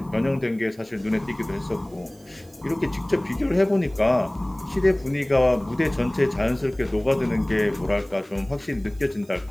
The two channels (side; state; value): right; noise; hiss, 28 dB below the sound